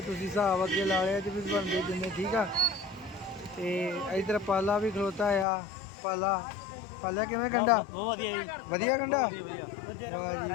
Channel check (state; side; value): drops out; right; at 5.5 s